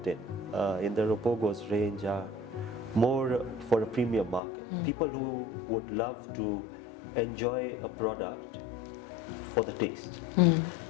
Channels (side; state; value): right; drops out; at 4.4 s